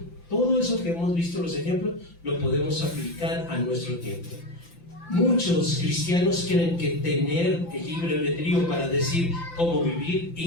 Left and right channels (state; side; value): late; right; 5.9 ms